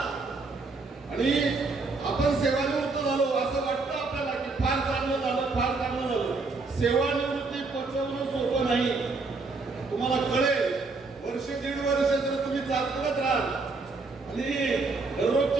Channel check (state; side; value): quieter; left; 3.9 dB